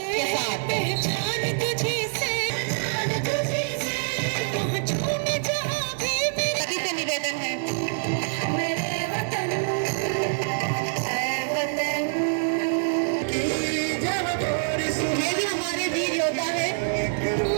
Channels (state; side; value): silent; left; digital silence